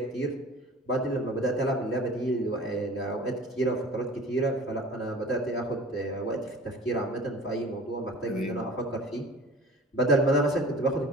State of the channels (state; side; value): normal; both; correlation 0.42